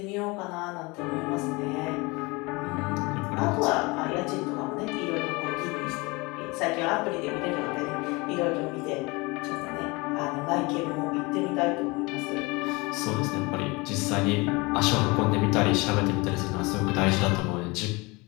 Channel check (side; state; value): right; quieter; 25.5 dB